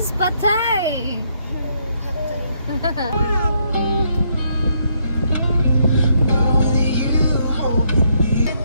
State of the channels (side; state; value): both; inverted; correlation -0.73